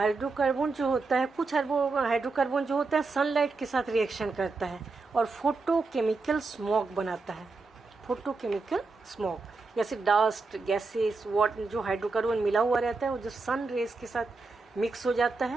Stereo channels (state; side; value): quieter; left; 3.9 dB